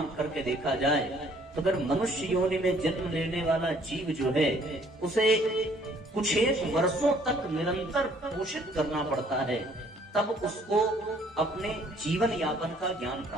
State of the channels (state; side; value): normal; both; correlation 0.60